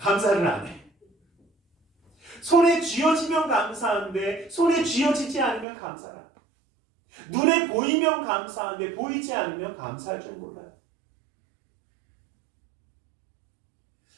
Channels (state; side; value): drops out; left; at 5.7 s